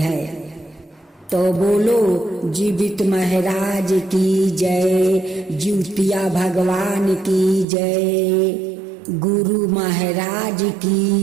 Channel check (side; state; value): left; drops out; at 7.7 s